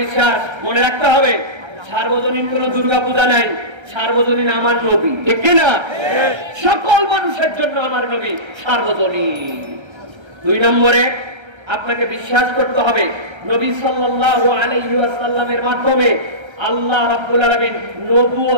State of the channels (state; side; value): late; left; 1.3 ms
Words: বিশ্বাস, মনে রাখতে হবে। সার্বজনীন কোন দুর্গা পূজা নাই, সার্বজনীন আমার নবী। ঠিক কি না? সকল মানুষের জন্য আমার নবী সার্বজনীন। দুই নম্বরে আপনাকে বিশ্বাস করতে হবে নবী সাল্লাল্লাহু আলাইহি ওয়াসাল্লামের মাধ্যমে আল্লাহ রাব্বুল আলামিন